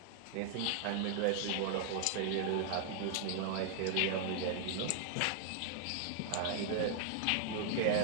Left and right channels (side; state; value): both; different; correlation 0.00